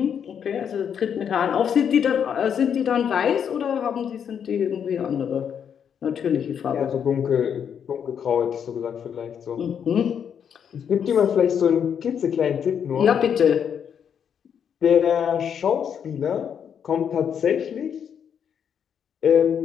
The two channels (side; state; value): right; quieter; 8.0 dB